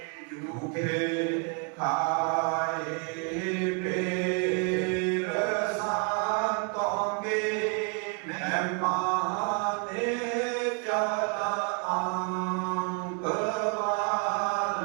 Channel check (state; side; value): quieter; left; 36.3 dB